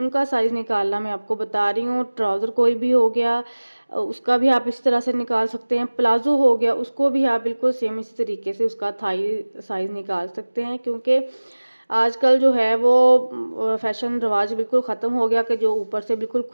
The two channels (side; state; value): both; inverted; correlation -1.00